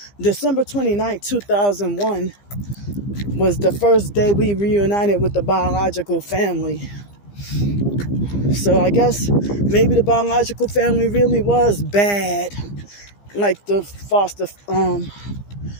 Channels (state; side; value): late; right; 15 ms